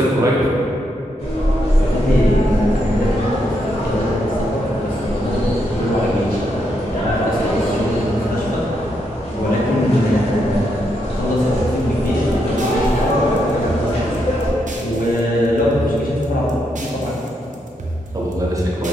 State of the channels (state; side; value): normal; both; correlation 0.79